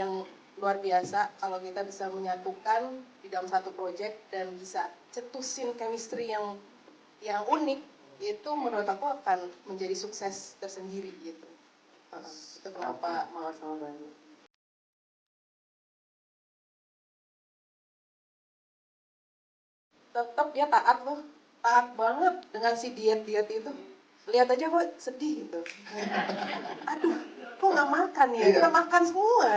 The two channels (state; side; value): identical; both; correlation 1.00